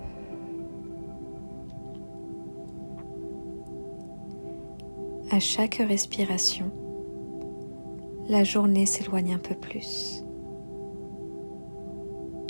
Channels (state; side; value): inverted; both; correlation -1.00